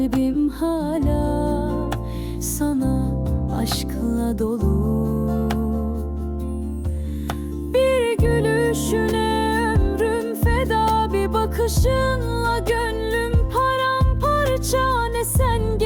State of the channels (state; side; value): identical; both; correlation 1.00